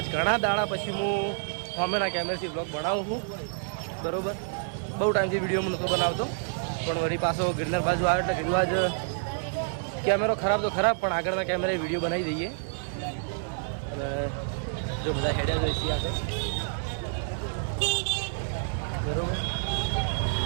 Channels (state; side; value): silent; left; digital silence